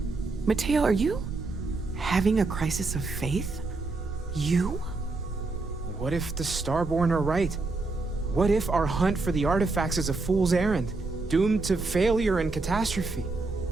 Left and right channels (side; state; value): left; quieter; 3.6 dB